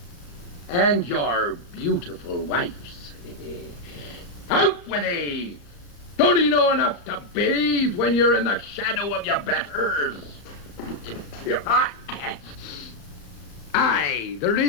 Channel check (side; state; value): right; late; 35 ms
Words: And your beautiful wife's. Out with thee! Don't you know enough to bathe when you're in the shadow of your betters? Aye, there